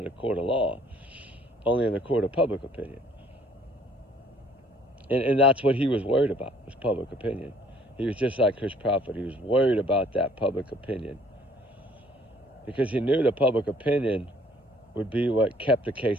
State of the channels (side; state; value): both; normal; correlation 0.58